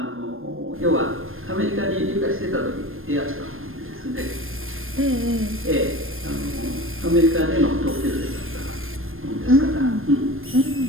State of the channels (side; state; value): left; late; 0.60 ms